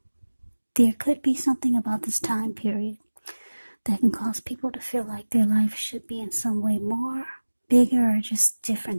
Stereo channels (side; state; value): both; inverted; correlation -1.00